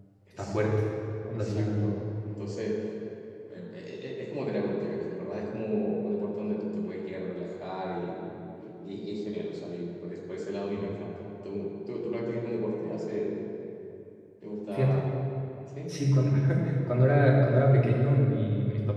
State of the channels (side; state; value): both; identical; correlation 1.00